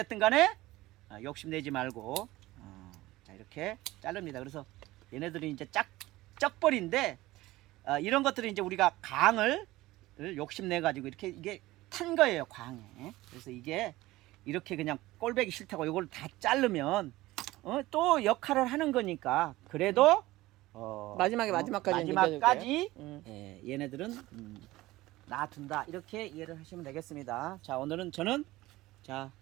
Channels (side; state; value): left; quieter; 18.1 dB